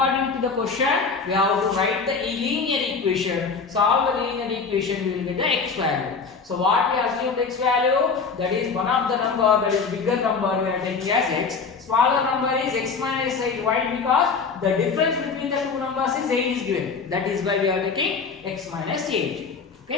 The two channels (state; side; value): quieter; right; 5.1 dB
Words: to the question, we have to write the linear equation. Solve the linear equation, we will get the x value. So what we assumed x value, that is one of the number, that is bigger number, we are taking as x. Smaller number is x minus 8. Why? Because the difference between the two numbers is 8 is given. That is why we are taking x minus 8.